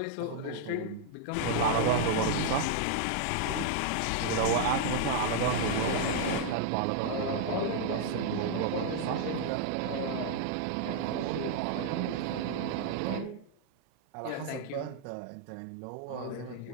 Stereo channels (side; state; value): both; different; correlation -0.01